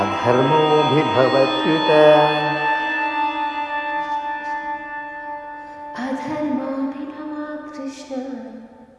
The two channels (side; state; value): both; identical; correlation 1.00